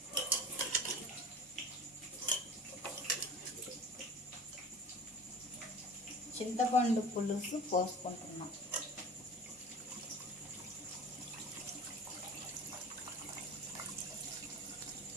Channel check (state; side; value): normal; both; correlation 0.38